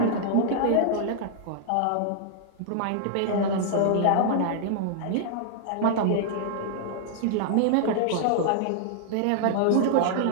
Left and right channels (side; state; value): both; different; correlation -0.01